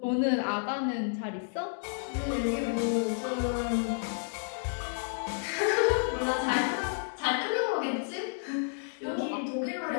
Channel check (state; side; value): silent; right; digital silence